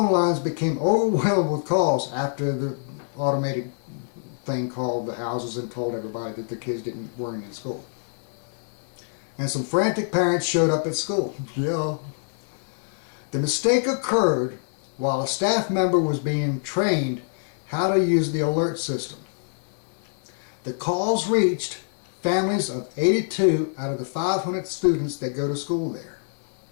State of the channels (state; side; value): silent; right; 61 dB below the other